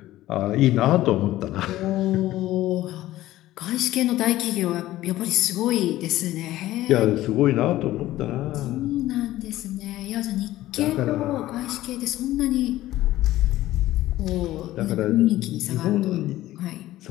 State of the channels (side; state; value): right; quieter; 15.4 dB